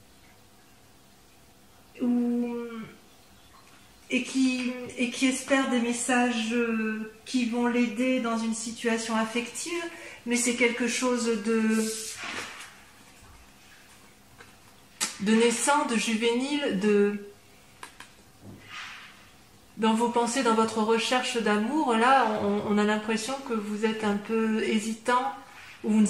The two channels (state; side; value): identical; both; correlation 1.00